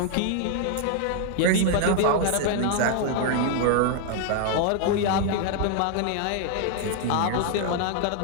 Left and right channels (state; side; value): different; both; correlation 0.00